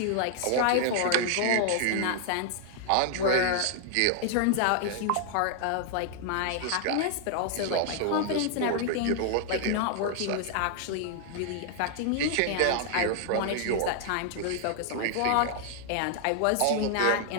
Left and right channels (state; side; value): different; both; correlation 0.00